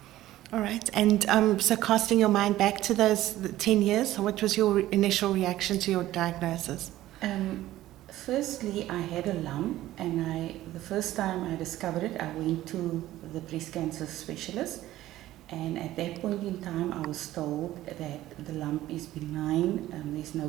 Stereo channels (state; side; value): quieter; left; 14.9 dB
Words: All right. And so casting your mind back to those 10 years, what was your initial reaction to your diagnosis? Firstly, I had a lump, and the first time I discovered it, I went to the breast cancer specialist, and at that point in time, I was told that the lump is benign, there's no